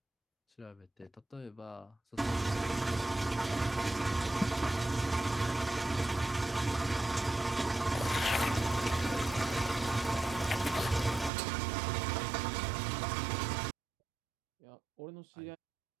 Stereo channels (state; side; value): drops out; left; at 11.3 s